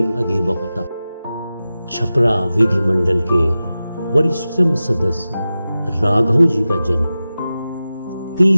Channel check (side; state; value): both; inverted; correlation -0.95